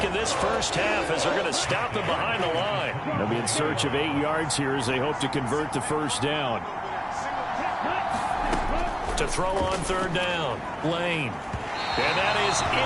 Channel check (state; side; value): identical; both; correlation 1.00